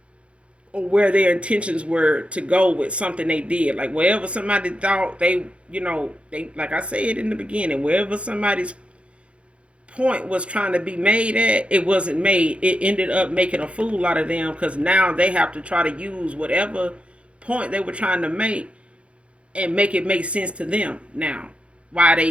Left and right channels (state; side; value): late; left; 0.060 ms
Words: or where their intentions were to go with something they did. Like wherever somebody thought they like I said in the beginning, wherever somebody's point was trying to be made at, it wasn't made. It ended up making a fool out of them, because now they have to try to use whatever point they were trying to make and make it make sense to them now.